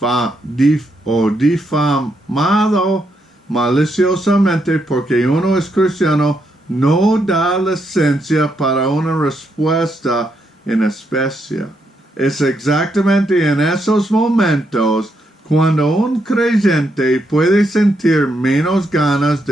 o difamado maliciosamente porque uno es cristiano no da licencia para una respuesta en especie. Es exactamente en esos momentos cuando un creyente puede sentir menos ganas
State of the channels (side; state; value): both; normal; correlation 0.79